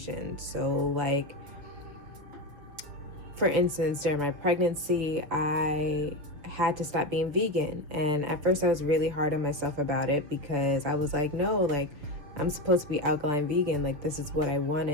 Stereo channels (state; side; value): late; left; 7.0 ms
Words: So like, for instance, during my pregnancy, I had to stop being vegan. And at first I was really hard on myself about it, because I was like, no, like, I'm supposed to be alkaline vegan. Like, this is what I